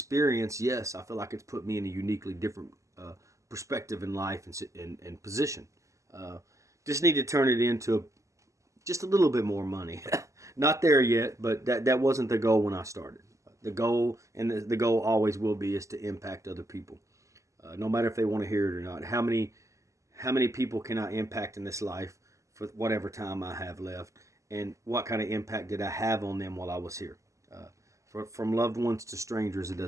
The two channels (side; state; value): left; late; 0.15 ms